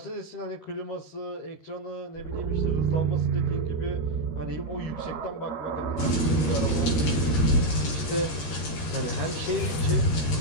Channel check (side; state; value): right; late; 13 ms